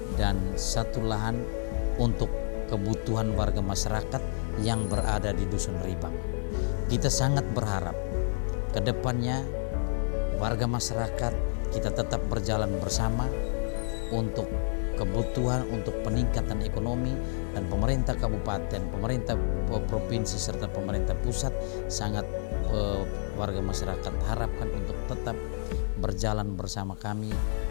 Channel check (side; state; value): right; silent; digital silence